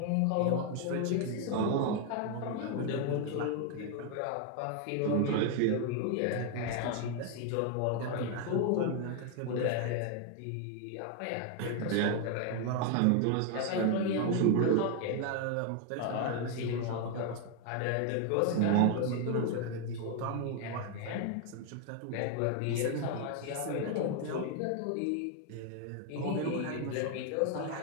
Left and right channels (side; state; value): both; different; correlation 0.00